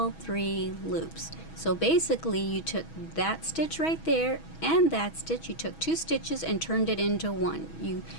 3 loops. So basically you took that stitch right there and that stitch, you took 2 stitches and turned it into 1. You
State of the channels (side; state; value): right; late; 6.2 ms